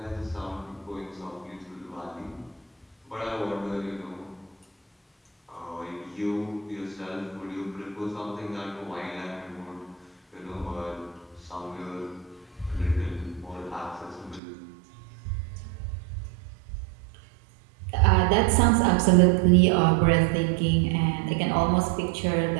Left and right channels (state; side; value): drops out; left; at 14.4 s